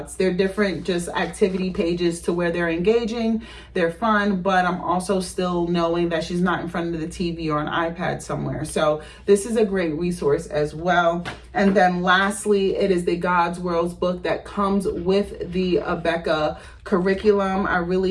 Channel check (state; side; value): identical; both; correlation 1.00